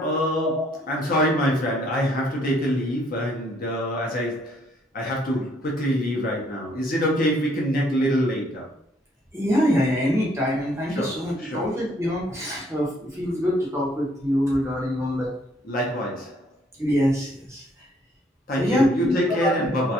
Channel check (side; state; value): both; normal; correlation 0.65